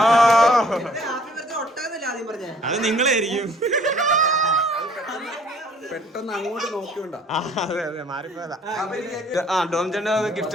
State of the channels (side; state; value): both; normal; correlation 0.57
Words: അത് നിങ്ങളായിരിക്കും. പെട്ടെന്ന് അങ്ങോട്ട് നോക്കിയോണ്ടാ. അതെ അതെ, മാറിപ്പോയതാ. ഡോം ചേട്ടന്റെ ഗിഫ്റ്റ്